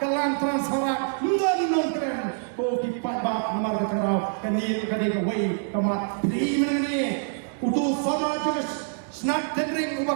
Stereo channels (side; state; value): left; silent; digital silence